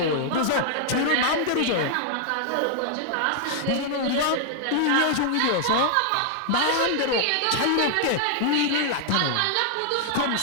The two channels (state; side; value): different; both; correlation -0.01